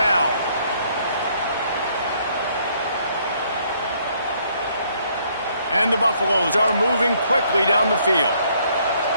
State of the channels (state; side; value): inverted; both; correlation -0.66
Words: And the Buffaloes are moving quickly down the field.